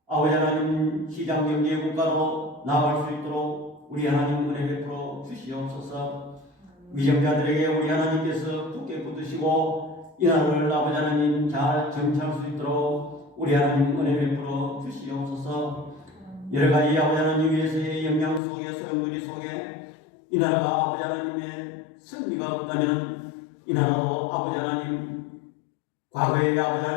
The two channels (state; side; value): drops out; right; at 18.4 s